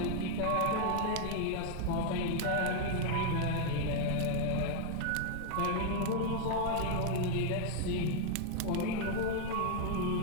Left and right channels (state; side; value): different; both; correlation 0.00